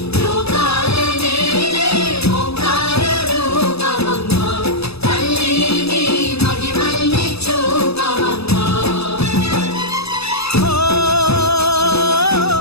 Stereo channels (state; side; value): late; right; 0.78 ms